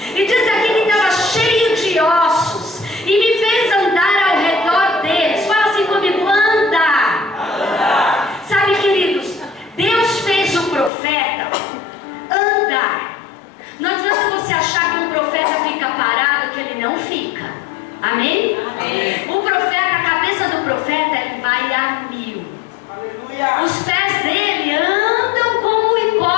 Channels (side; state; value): right; drops out; at 10.9 s